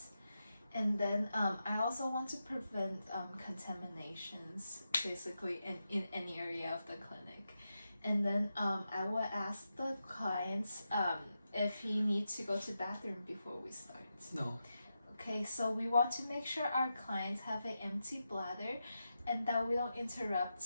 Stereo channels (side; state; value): both; inverted; correlation -0.88